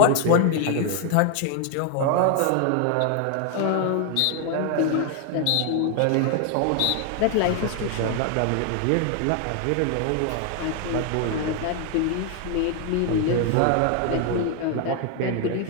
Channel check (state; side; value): different; both; correlation 0.00